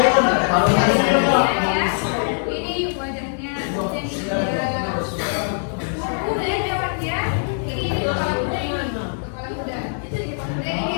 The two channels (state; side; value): silent; right; 64 dB below the other